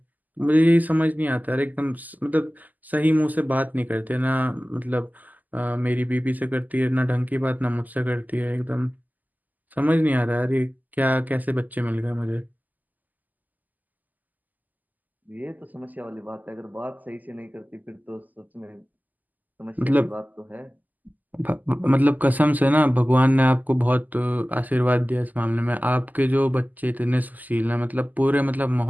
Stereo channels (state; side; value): late; left; 0.082 ms